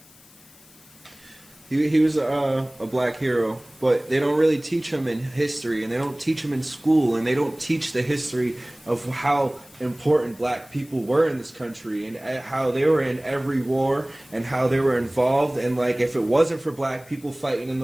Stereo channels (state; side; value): noise; left; hiss, 25 dB below the sound